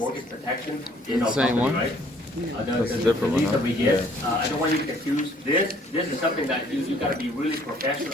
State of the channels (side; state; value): both; normal; correlation 0.60